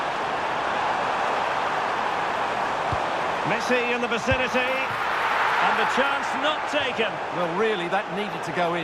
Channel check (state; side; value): identical; both; correlation 1.00